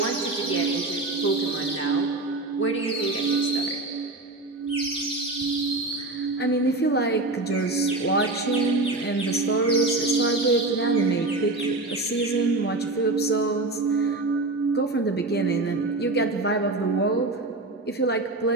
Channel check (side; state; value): left; quieter; 3.0 dB